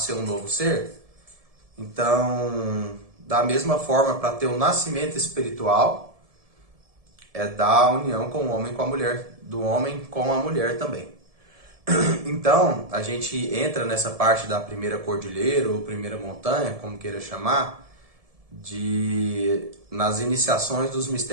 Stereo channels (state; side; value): late; left; 1.7 ms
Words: um novo ser. Então, da mesma forma, para ter um nascimento espiritual, é da união com o homem com a mulher, do homem com a mulher também. Então, a gente entra nessa parte da primeira cordilheira, ou primeira montanha, como queira chamar, nas iniciações dos